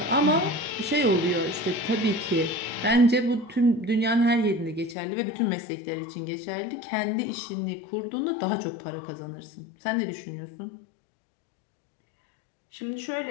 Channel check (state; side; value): drops out; right; at 5.0 s